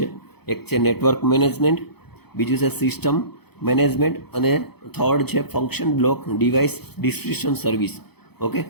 એક છે નેટવર્ક મેનેજમેન્ટ, બીજું છે સિસ્ટમ મેનેજમેન્ટ, અને થર્ડ છે function block device description service, okay.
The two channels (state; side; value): late; right; 0.97 ms